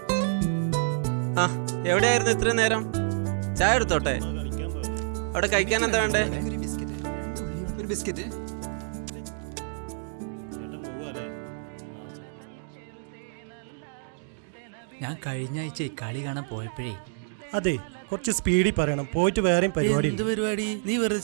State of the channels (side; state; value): left; silent; digital silence